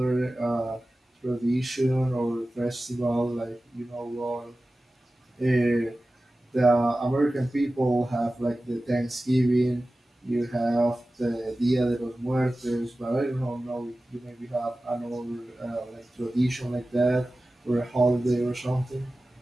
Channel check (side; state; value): both; normal; correlation 0.96